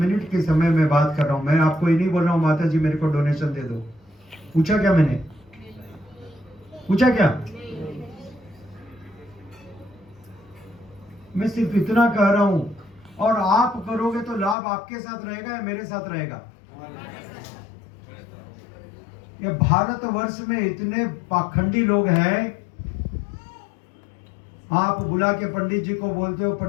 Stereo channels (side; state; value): right; drops out; at 14.6 s